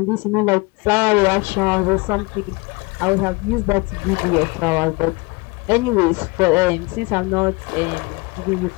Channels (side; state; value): right; quieter; 26.5 dB